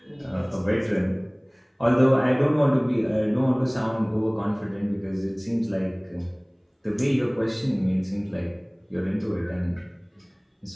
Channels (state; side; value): identical; both; correlation 1.00